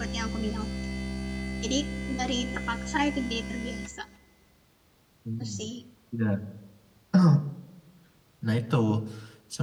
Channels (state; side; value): identical; both; correlation 1.00